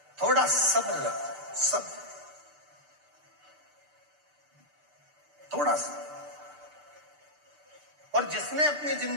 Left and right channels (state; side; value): late; left; 6.7 ms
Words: थोड़ा सब्र रखो, सब्र, थोड़ा सा। और जिसने अपनी